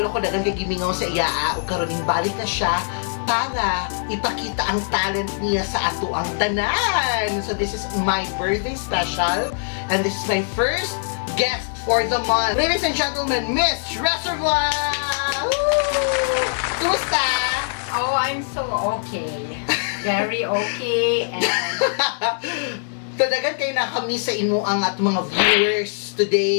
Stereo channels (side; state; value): right; silent; digital silence